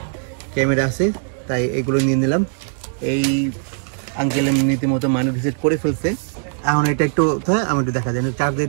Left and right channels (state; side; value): silent; left; 66 dB below the other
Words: ক্যামেরা আছে তাই এগুলো নিয়ে নিলাম। এই আঙ্কেল নীতিমতো মানি রিসেট করে ফেলছে। এখন এটা একটু আমি একটু দেখা দেন, চার্জ দিয়ে